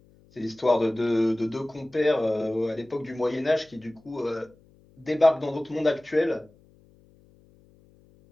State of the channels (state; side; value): noise; left; hum, 29 dB below the sound